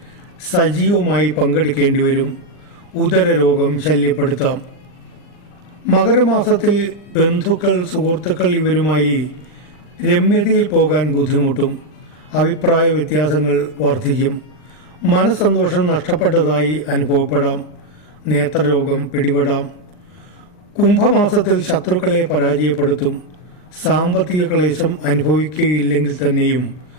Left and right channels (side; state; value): right; late; 40 ms